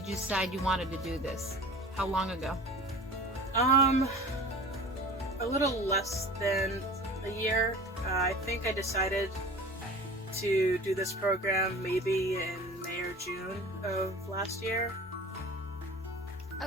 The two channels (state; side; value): normal; both; correlation 0.39